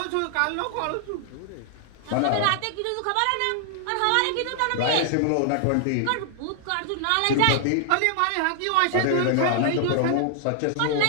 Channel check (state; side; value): different; both; correlation 0.00